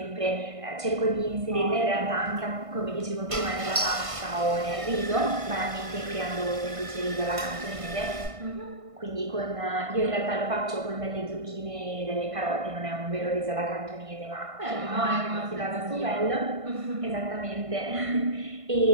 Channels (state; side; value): late; left; 1.5 ms